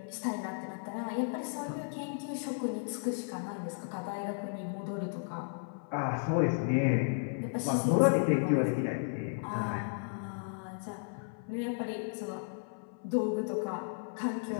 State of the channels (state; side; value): silent; right; 55 dB below the other